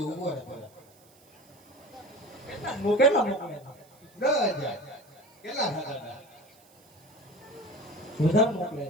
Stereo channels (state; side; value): noise; right; hiss, 29 dB below the sound